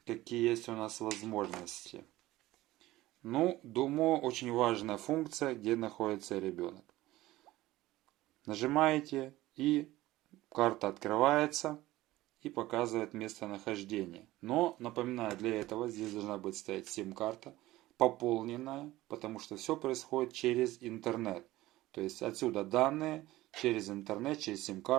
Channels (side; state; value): left; quieter; 17.1 dB